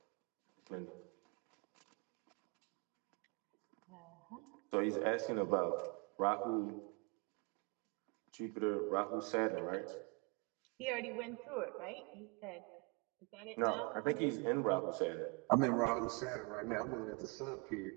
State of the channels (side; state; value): left; quieter; 31.6 dB